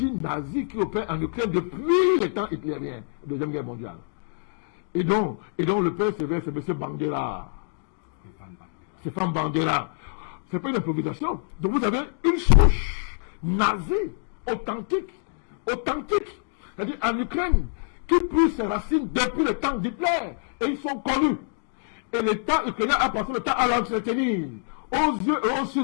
nazie qui opère en Ukraine depuis les temps hitlériens, Deuxième Guerre mondiale. Et donc le père sévère, c'est M. Bandera. Stéphane Bandera. C'est pas une improvisation. Donc vous avez une souche nazie, authentique. C'est-à-dire en Ukraine, qui pousse ses racines depuis le temps d'Hitler. Et ils sont connus. Et l'État ukrainien a passé le temps à l'entretenir. Aux yeux et aux yeux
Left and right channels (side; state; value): right; silent; digital silence